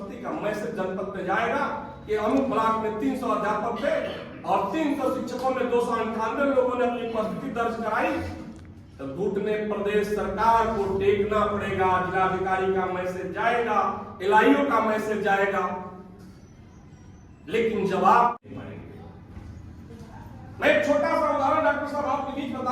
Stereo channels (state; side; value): identical; both; correlation 1.00